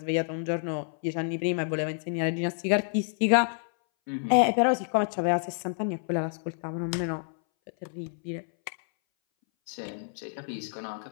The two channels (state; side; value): silent; right; 59 dB below the other